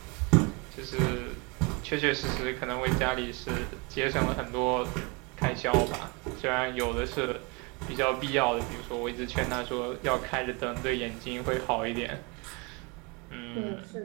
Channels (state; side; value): quieter; left; 28.8 dB